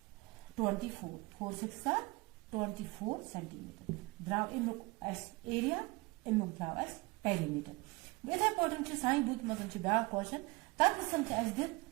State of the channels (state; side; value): quieter; left; 24.4 dB